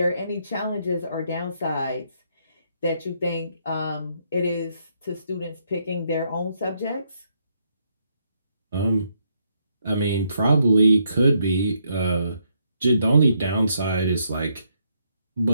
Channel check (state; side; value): inverted; both; correlation -0.75